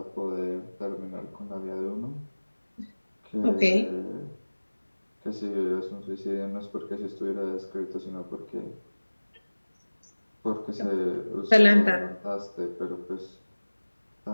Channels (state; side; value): inverted; both; correlation -1.00